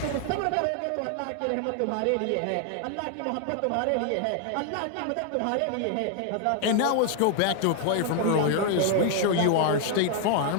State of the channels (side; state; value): both; different; correlation 0.00